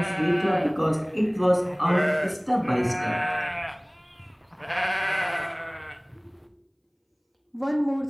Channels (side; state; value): both; identical; correlation 1.00